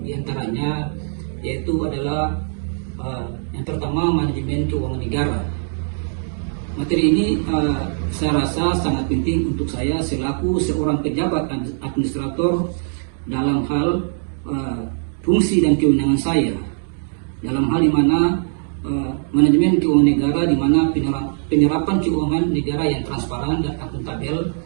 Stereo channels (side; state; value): left; silent; digital silence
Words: Di antaranya yaitu adalah yang pertama, manajemen keuangan negara. Materi ini saya rasa sangat penting untuk saya selaku seorang pejabat administrator dalam hal fungsi dan kewenangan saya, dalam hal di mana manajemen keuangan negara, di mana penyerapan keuangan negara yang transparan dan akuntabel